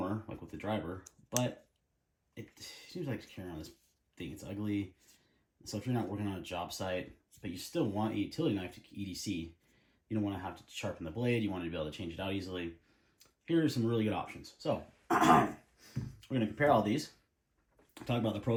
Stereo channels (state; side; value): identical; both; correlation 1.00